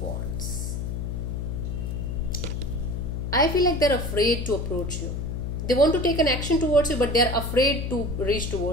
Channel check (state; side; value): noise; left; hum, 3 dB below the sound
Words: Wands. I feel like they're afraid to approach you. They want to take an action towards you, but they're afraid to reach